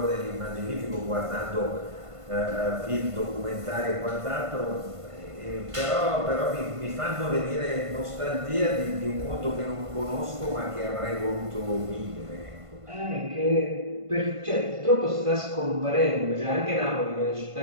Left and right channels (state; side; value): late; left; 1.5 ms